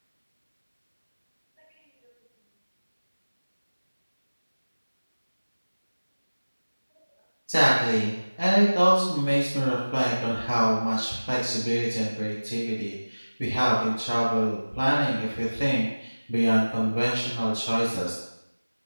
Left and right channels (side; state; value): both; inverted; correlation -1.00